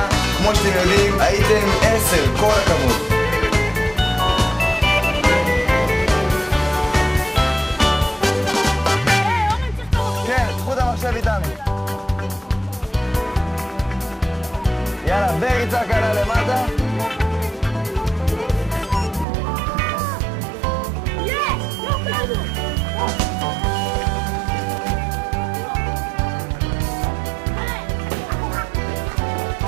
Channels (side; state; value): left; drops out; at 19.2 s